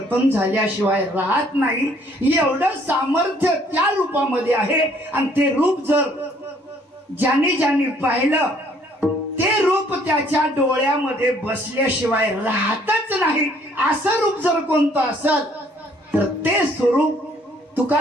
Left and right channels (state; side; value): normal; both; correlation 0.62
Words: झाल्याशिवाय राहत नाही. एवढं सामर्थ्य त्या रूपामध्ये आहे. आणि ते रूप जर ज्याने पाहिलं, ते रूप त्याच्या डोळ्यामध्ये बसल्याशिवाय राहतच नाही. असं रूप जर कोणतं असेल तर ते स्वरूप